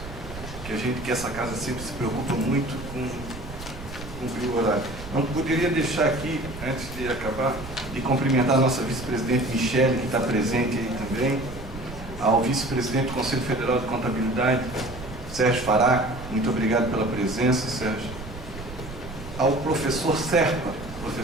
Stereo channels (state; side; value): noise; right; rumble, 12 dB below the sound